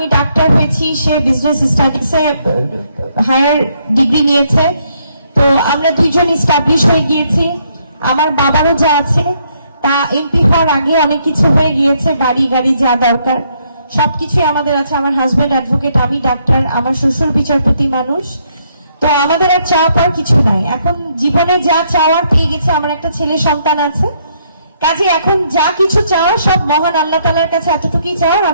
ডাক্তার হয়েছি, সে বিজনেস স্টাডিজে হায়ার ডিগ্রি নিয়েছে। তো আমরা দুইজন এস্টাবলিশ হয়ে গিয়েছি। আমার বাবারও যা আছে তা এমপি হওয়ার আগে অনেক কিছু হয়ে গিয়েছে, বাড়ি গাড়ি যা দরকার সবকিছু আমাদের আছে। আমার হাজবেন্ড অ্যাডভোকেট, আমি ডাক্তার, আমার শ্বশুর বিচারপতি মানুষ। তো আমাদের আর চাওয়া পাওয়ার কিছু নাই, এখন জীবনে যা চাওয়ার পেয়ে গেছে। আমার একটা ছেলে সন্তান আছে, কাজে এখন যা কিছু চাওয়া সব মহান আল্লাহ তাআলার কাছে এতটুকুই চাওয়ার,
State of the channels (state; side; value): inverted; both; correlation -0.72